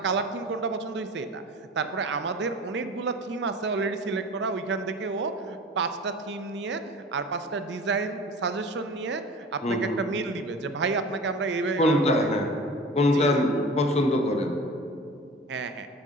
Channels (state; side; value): normal; both; correlation 0.39